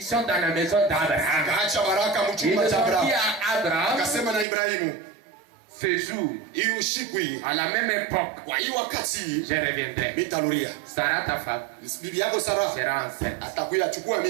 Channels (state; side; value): drops out; left; at 4.5 s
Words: dans la maison d'Abraham. Ils ont dit à Abraham, ce jour, à la même époque, je reviendrai. Sarah, ta femme, sera enceinte.